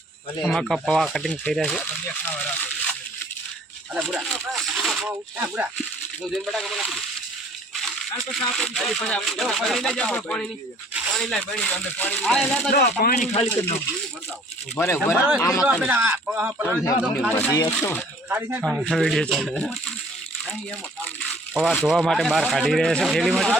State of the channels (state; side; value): normal; both; correlation 0.55